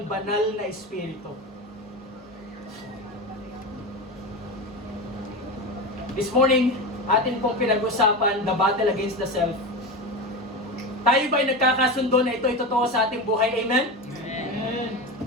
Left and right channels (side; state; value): both; normal; correlation 0.22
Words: banal na Espiritu. This morning, atin pong pinag-usapan the battle against the self. Tayo ba'y nagkakasundo na ito'y totoo sa ating buhay? Amen? Amen.